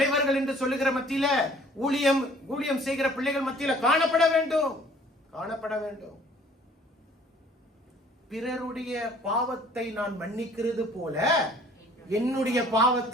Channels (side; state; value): both; normal; correlation 0.55